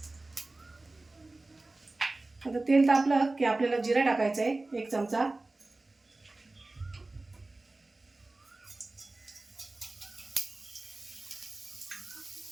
आता तेल तापलं की आपल्याला जिरा टाकायचं आहे 1 चमचा.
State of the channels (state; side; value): quieter; left; 3.1 dB